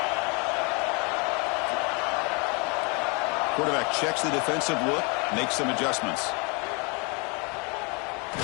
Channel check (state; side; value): quieter; right; 31.7 dB